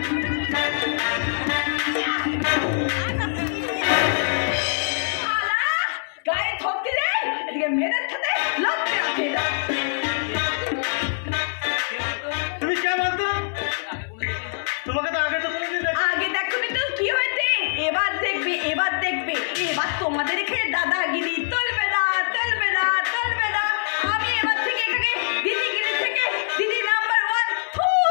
গায়ে থপ দিলে এদিকে মেয়েদের সাথে লড়তে আসে না। আগে দেখোনি তো কি হয়েছে, এবার দেখবে। এবার তোমাদের এখানে দাদাগিরি চলবে না। আমি এবার থেকে এখানে দিদিগিরি থেকে দিদি নাম্বার 1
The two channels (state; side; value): silent; right; 63 dB below the other